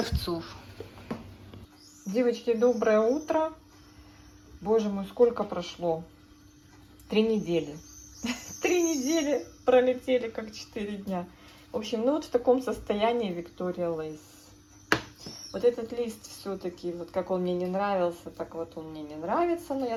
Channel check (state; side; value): identical; both; correlation 1.00